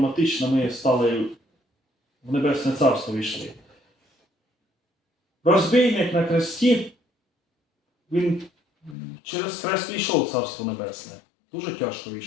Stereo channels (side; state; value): right; drops out; at 9.0 s